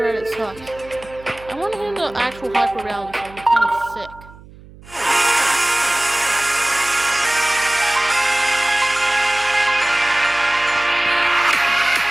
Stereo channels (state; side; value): noise; right; hum, 21 dB below the sound